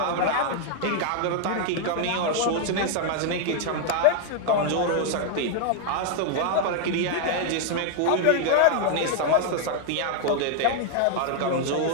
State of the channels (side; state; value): both; different; correlation 0.00